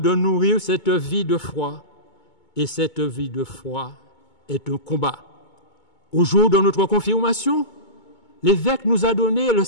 nourrir cette vie de foi. Et cette vie de foi est un combat. Au jour de notre confirmation, l'évêque nous a donné le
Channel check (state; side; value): late; right; 2.2 ms